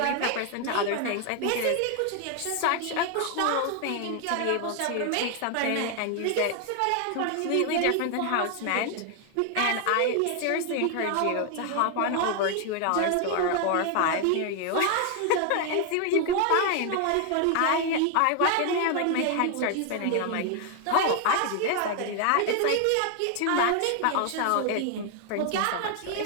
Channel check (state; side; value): different; both; correlation 0.00